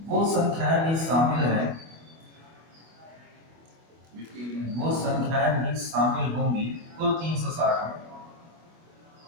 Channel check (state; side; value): late; left; 25 ms